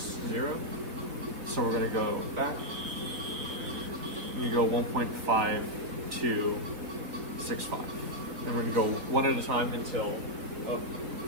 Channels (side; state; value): left; late; 3.7 ms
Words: So we're gonna go back. We go 1.5265. And we're gonna go one at a time until